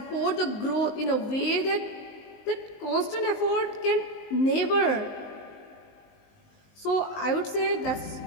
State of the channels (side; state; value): right; late; 19 ms